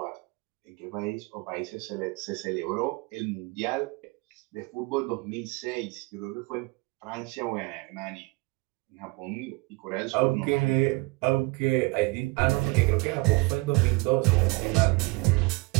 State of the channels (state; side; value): quieter; left; 25.8 dB